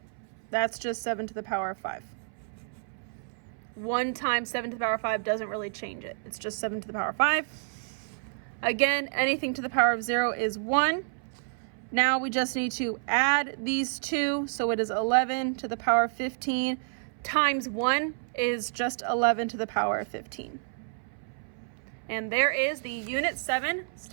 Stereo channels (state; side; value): silent; left; 58 dB below the other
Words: That's just 7 to the power of 5. 1 times 7 to the power of 5 doesn't really change it. It's just 7 to the power of 5. Again, anything to the power of 0 is 1. Now we just need to add these two, so it is 11 to the power of 15 times 1 is just 11 to the power of 15. And there is the Unit 7